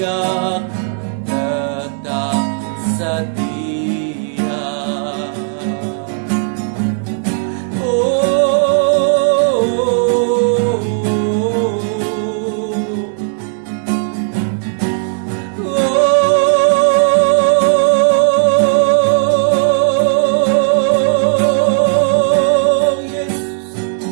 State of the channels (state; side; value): silent; left; digital silence